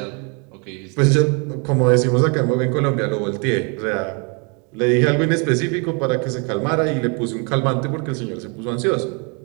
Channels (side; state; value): left; quieter; 34.6 dB